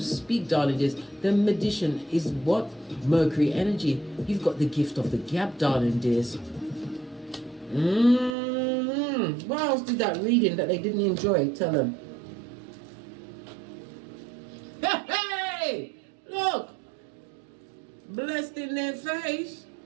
darling dears. The magician is what? Mercury energy. You've got the gift of the gab, darling dears. What else did that reading that they didn't enjoy tell them? Hey! Look! Blessed in their face.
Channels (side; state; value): left; drops out; at 8.3 s